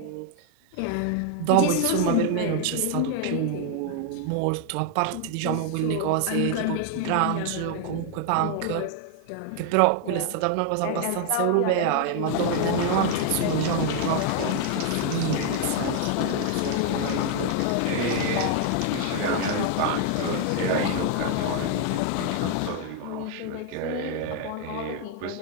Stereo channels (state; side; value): different; both; correlation 0.00